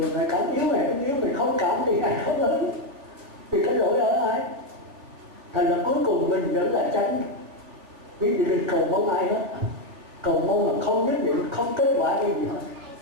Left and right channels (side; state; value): left; late; 3.5 ms